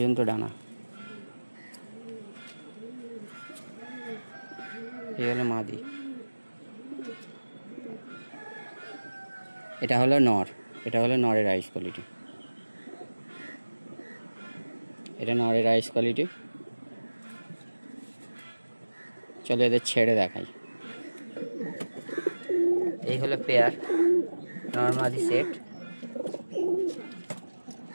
ডানা। এই হলো মাদি। এটা হলো নর, এটা হলো নরের আইস কোয়ালিটি, এটা নরের আইস কোয়ালিটি। চলো এদের ছেড়ে দেখাই। এই হলো পেয়ার নর্মালি সেট,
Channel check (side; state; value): both; inverted; correlation -1.00